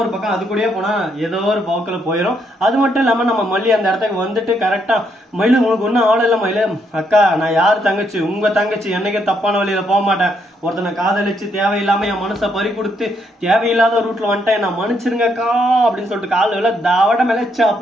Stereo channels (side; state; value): both; normal; correlation 0.75